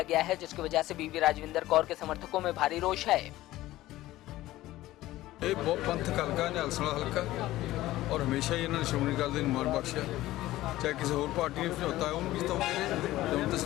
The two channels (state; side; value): quieter; right; 16.1 dB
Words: गया है, जिसकी वजह से बीवी राजविंदर कौर के समर्थकों में भारी रोष है। ਇਹ ਬਹੁਤ ਪੰਥਕ ਹਲਕਾ ਨਿਹਾਲਸਣਾ ਹਲਕਾ ਔਰ ਹਮੇਸ਼ਾ ਹੀ ਇਹਨਾਂ ਨੇ ਸ਼੍ਰੋਮਣੀ ਅਕਾਲੀ ਦਲ ਨੂੰ ਮਾਣ ਬਖਸ਼ਿਆ। ਚਾਹੇ ਕਿਸੇ ਹੋਰ ਪਾਰਟੀ ਨੇ ਸਮਝੌਤਾ ਉਹਨੂੰ ਵੀ ਜਿਤਾਉਂਦੇ ਰਹੇ, ਹੁਣ ਤਾਂ